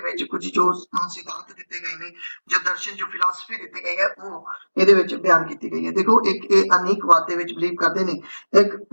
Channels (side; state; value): both; inverted; correlation -1.00